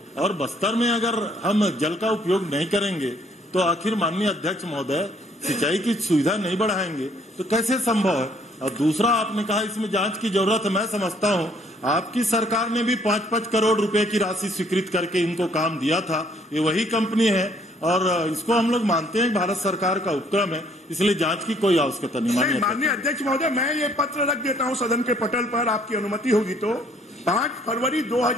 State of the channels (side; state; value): both; normal; correlation 0.63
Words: और बस्तर में अगर हम जल का उपयोग नहीं करेंगे तो आखिर माननीय अध्यक्ष महोदय सिंचाई की सुविधा नहीं बढ़ाएंगे तो कैसे संभव है? और दूसरा, आपने कहा इसमें जांच की जरूरत है। मैं समझता हूं आपकी सरकार ने भी 5-5 करोड़ रुपए की राशि स्वीकृत करके इनको काम दिया था। ये वही कंपनी है और इसको हम लोग मानते हैं भारत सरकार का उपक्रम है, इसलिए जांच की कोई आवश्यकता नहीं। माननीय अध्यक्ष महोदय, मैं ये पत्र रख देता हूं सदन के पटल पर, आपकी अनुमति होगी तो। 5 फरवरी